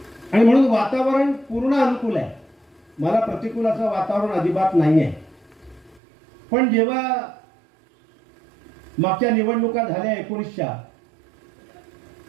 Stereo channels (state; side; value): drops out; left; at 6.0 s